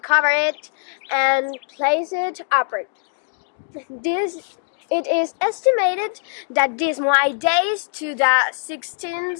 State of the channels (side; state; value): right; silent; 61 dB below the other